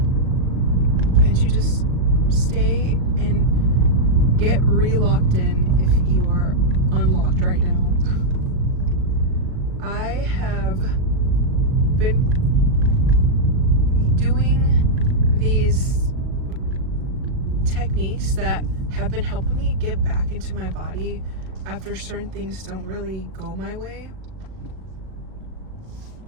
and to just stay and get re-locked in if you are unlocked right now. I have been doing these techniques that have been helping me get back into my body after certain things don't really go my way.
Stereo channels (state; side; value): late; left; 38 ms